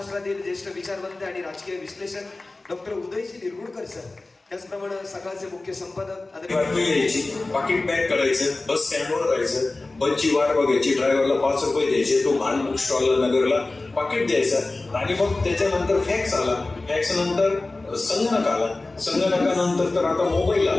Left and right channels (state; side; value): quieter; right; 3.2 dB